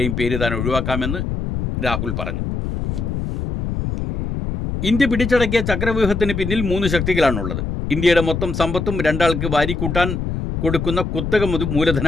പേര് താൻ ഒഴിവാക്കാമെന്ന് രാഹുൽ പറഞ്ഞു. ഇന്ത്യ പിടിച്ചടക്കിയ ചക്രവ്യൂഹത്തിന് പിന്നിൽ 3 ശക്തികളാണുള്ളത്. ഇന്ത്യയുടെ മൊത്തം സമ്പത്തും 2 ആൾക്ക് വാരിക്കൂട്ടാൻ കൊടുക്കുന്ന കുത്തക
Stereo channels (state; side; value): noise; left; rumble, 3 dB below the sound